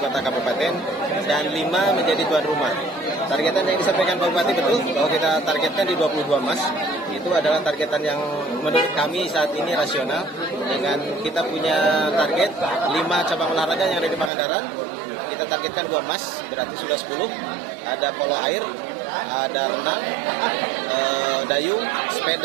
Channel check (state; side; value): drops out; left; at 14.3 s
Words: kota kabupaten dan 5 menjadi tuan rumah. Targetan yang disampaikan Pak Bupati betul bahwa kita targetkan di 22 emas. Itu adalah targetan yang menurut kami saat ini rasional. Dengan kita punya target 5 cabang olahraga yang ada di Pangandaran. Kita targetkan 2 emas, berarti sudah 10. Ada polo air, ada renang, dayung,